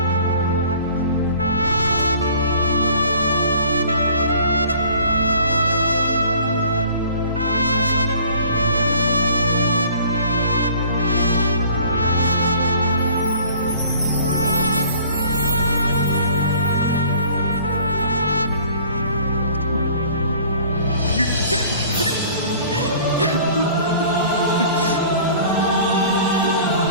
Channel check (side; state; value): both; inverted; correlation -0.50